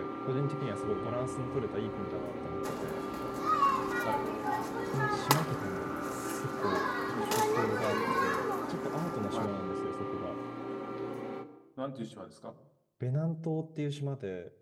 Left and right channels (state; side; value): identical; both; correlation 1.00